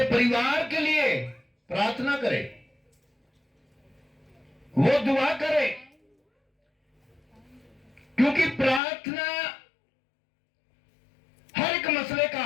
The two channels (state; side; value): drops out; right; at 8.8 s